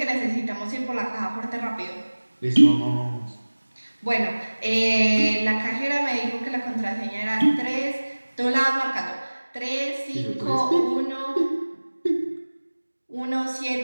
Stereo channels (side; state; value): both; inverted; correlation -1.00